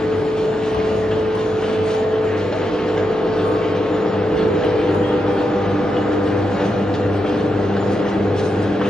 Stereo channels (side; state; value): both; normal; correlation 0.85